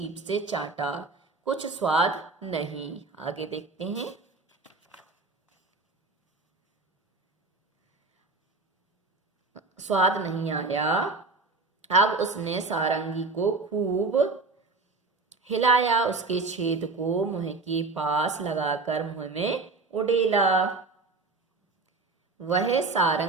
से चाटा। कुछ स्वाद नहीं। आगे देखते हैं। स्वाद नहीं आया। अब उसने सारंगी को खूब हिलाया, उसके छेद को मुंह के पास लगाकर मुंह में उड़ेला। वह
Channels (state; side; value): quieter; left; 3.7 dB